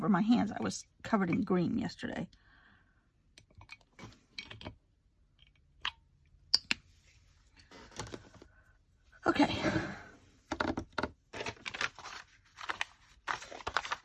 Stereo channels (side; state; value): both; identical; correlation 1.00